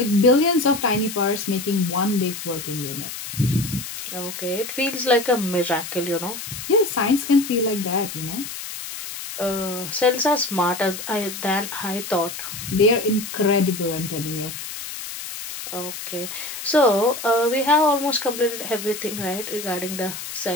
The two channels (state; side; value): noise; left; hiss, 9 dB below the sound